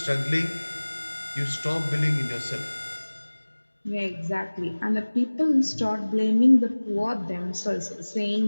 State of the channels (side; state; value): both; inverted; correlation -1.00